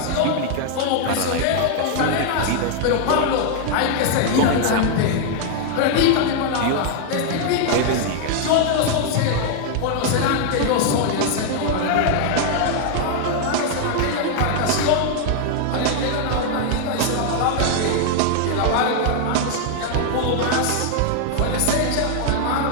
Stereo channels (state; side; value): different; both; correlation 0.00